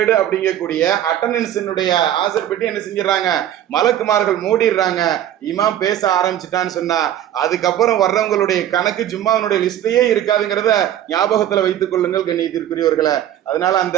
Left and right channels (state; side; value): quieter; left; 11.4 dB